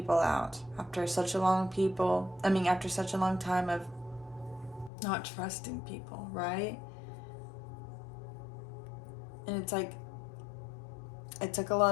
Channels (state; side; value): drops out; right; at 4.9 s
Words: out, after such a long time of not trusting people, right? And it's like, it took a